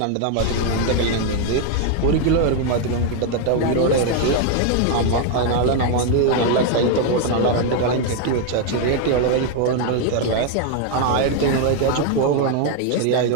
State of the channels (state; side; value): different; both; correlation 0.01